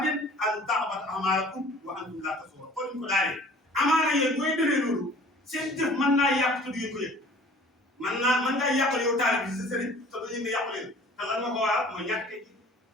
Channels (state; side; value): normal; both; correlation 0.49